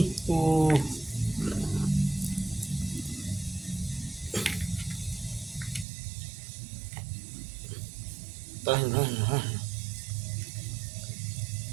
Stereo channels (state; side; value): drops out; left; at 5.9 s